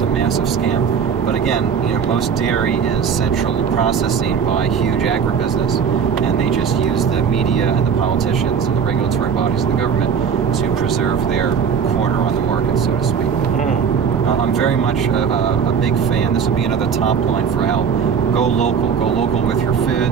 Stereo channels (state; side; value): quieter; left; 6.8 dB